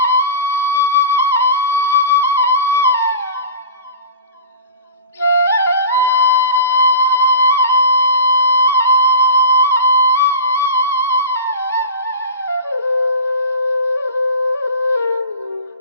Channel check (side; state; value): both; inverted; correlation -0.33